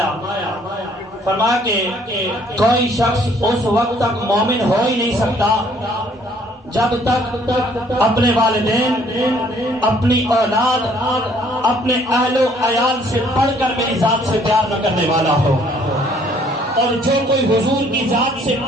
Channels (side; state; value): both; normal; correlation 0.61